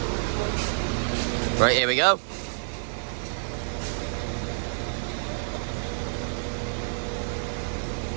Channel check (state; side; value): silent; left; digital silence